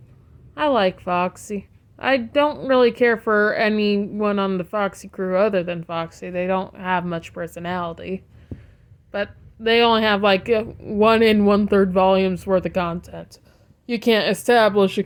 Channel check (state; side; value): identical; both; correlation 1.00